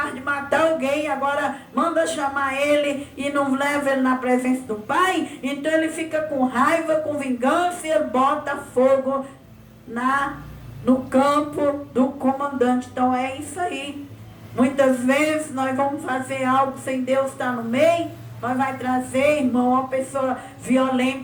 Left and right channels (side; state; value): both; identical; correlation 1.00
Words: de matar alguém. Agora manda chamar ele e não leva ele na presença do pai. Então ele fica com raiva, com vingança, e ele bota fogo no campo do comandante. Então é isso aí. Muitas vezes nós vamos fazer algo sem Deus estar no meio. Nós vai trazer, irmão, uma pessoa